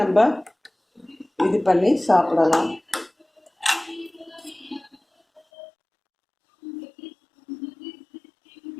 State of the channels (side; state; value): right; drops out; at 5.4 s